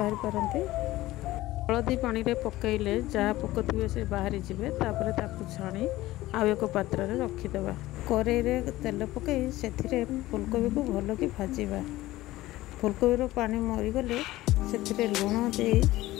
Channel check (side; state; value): right; quieter; 17.0 dB